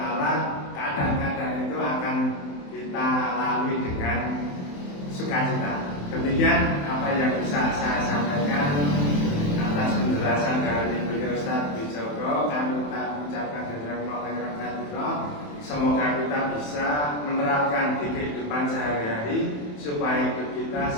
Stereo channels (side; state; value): right; late; 27 ms